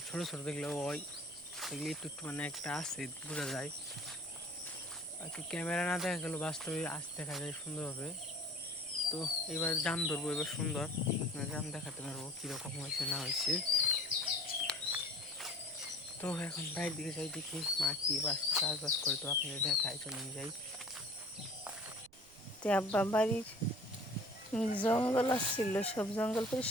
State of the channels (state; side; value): noise; right; rumble, 26 dB below the sound